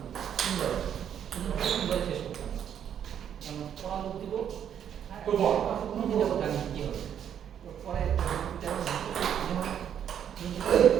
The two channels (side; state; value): left; quieter; 9.1 dB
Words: 3 বলে শেষ করতাম আমি পড়া লোক দিব তো বল জানি কি হবে পরে যেমন